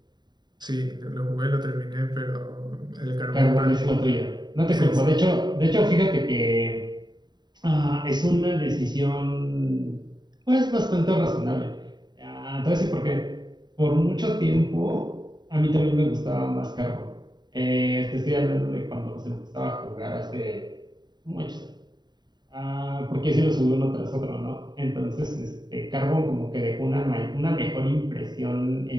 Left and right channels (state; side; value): late; left; 0.21 ms